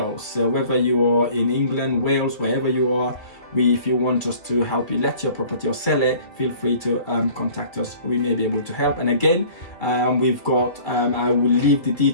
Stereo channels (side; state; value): right; late; 2.2 ms